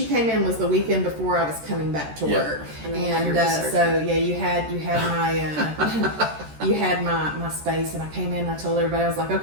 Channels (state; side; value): late; left; 13 ms